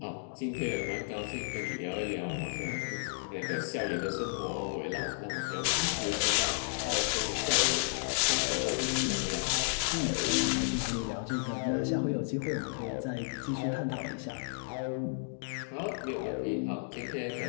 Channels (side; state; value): right; silent; digital silence